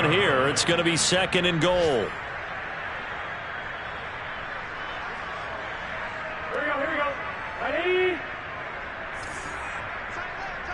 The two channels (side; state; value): both; identical; correlation 1.00